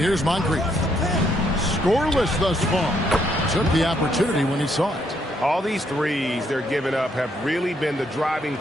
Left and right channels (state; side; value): normal; both; correlation 0.73